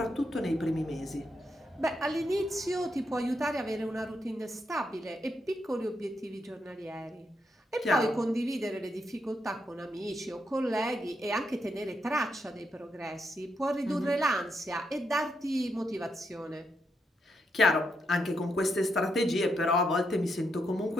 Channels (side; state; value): both; normal; correlation 0.81